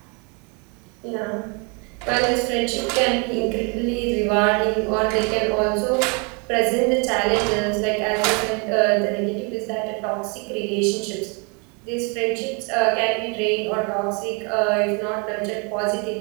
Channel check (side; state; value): left; quieter; 33.4 dB